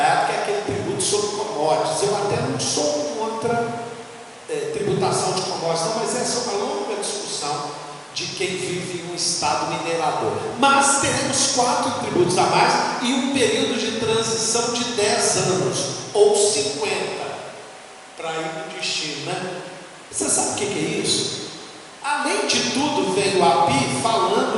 que é aquele tributo sobre commodities. Eu até não sou contra tributação de commodities, não, mas essa é uma longa discussão de quem vive em um estado minerador. Mas teremos 4 tributos a mais e um período de transição de 10 anos, ou 50, para ir no destino, né? Você sabe o que é isso? Além de tudo, veio o API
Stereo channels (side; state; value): both; identical; correlation 1.00